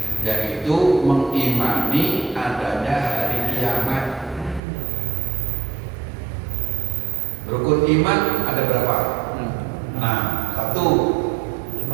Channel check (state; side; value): drops out; left; at 4.6 s